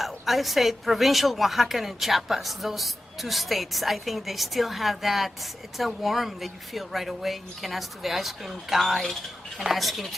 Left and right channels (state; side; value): normal; both; correlation 0.93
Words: say provincial Oaxaca and Chiapas, those two states, I think they still have that. It's a warmth that you feel right away. You can ask to the ice cream guy, you can ask him